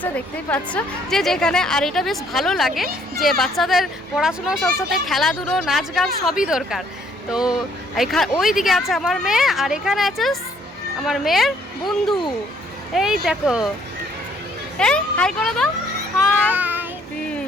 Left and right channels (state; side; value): normal; both; correlation 0.64